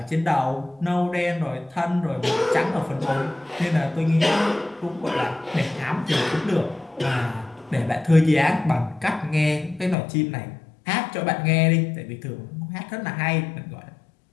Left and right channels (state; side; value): drops out; right; at 10.0 s